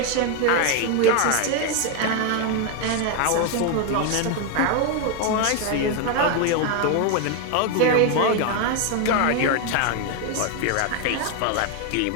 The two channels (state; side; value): different; both; correlation 0.01